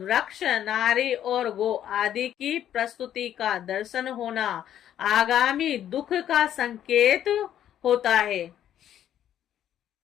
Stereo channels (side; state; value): right; quieter; 10.8 dB